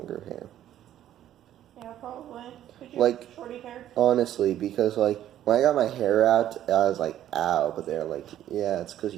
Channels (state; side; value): quieter; left; 11.9 dB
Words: hair. Yeah, probably. Could you Like, have shorty hair? honestly, because like when I got my hair out, I was like, ow, but they're like, yeah, it's because